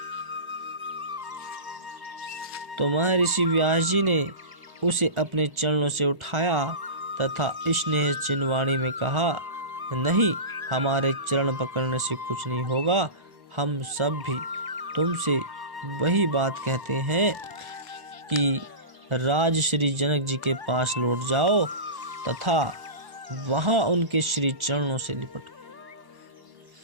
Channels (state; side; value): late; left; 1.4 ms